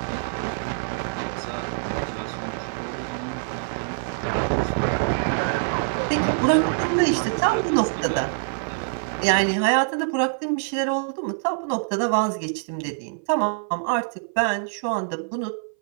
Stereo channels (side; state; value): left; silent; 58 dB below the other